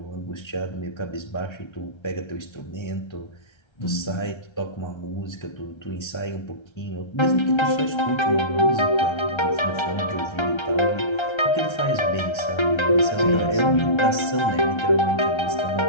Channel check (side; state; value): right; late; 1.3 ms